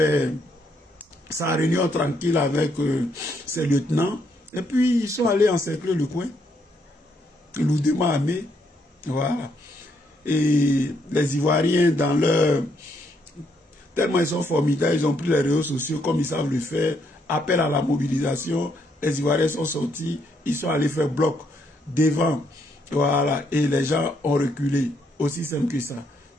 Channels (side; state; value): both; normal; correlation 0.74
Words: sa réunion tranquille avec ses lieutenants. Et puis, ils sont allés encercler le coin. Lourdement armés. Voilà. Et les Ivoiriens, dans leur... tellement ils sont formidables, ils ont pris les réseaux sociaux comme ils savent le faire. Appel à la mobilisation. Les Ivoiriens sont sortis. Ils sont allés faire bloc devant. Voilà. Et les gens ont reculé. Aussi simple que ça.